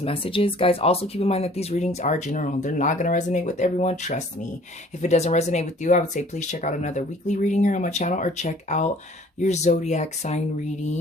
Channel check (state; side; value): normal; both; correlation 0.53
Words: messages. Guys, also keep in mind that these readings are general. They're not going to resonate with everyone, trust me. If it doesn't resonate with you, I would say please check out another weekly reading here on my channel, or check out your zodiac sign